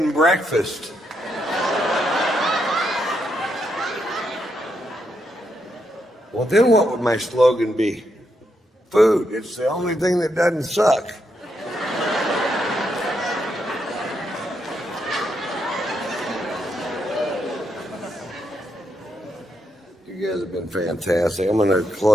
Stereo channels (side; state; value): both; normal; correlation 0.80